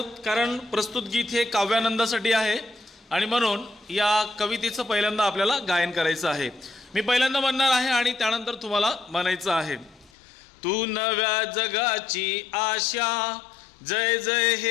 कारण प्रस्तुत गीत हे काव्यानंदासाठी आहे आणि म्हणून या कवितेचं पहिल्यांदा आपल्याला गायन करायचं आहे। मी पहिल्यांदा म्हणणार आहे आणि त्यानंतर तुम्हाला म्हणायचं आहे। तू नव्या जगाची आशा, जय जय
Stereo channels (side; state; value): right; drops out; at 10.1 s